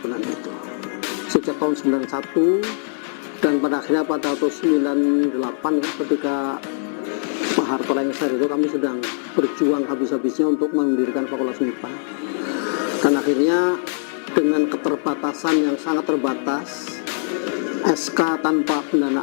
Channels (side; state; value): right; silent; digital silence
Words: itu. Sejak tahun 91 dan pada akhirnya pada tahun 98 ya, ketika Pak Harto lengser itu kami sedang berjuang habis-habisnya untuk mendirikan Fakultas MIPA. Dan akhirnya dengan keterbatasan yang sangat terbatas, SK tanpa